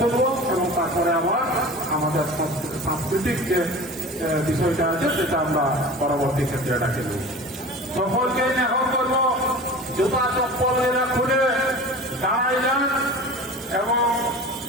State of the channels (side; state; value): both; normal; correlation 0.37